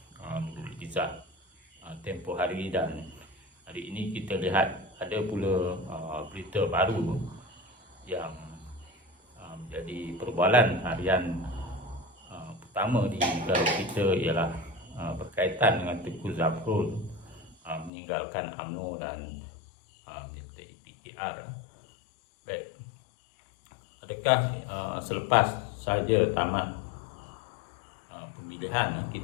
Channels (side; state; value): right; drops out; at 17.9 s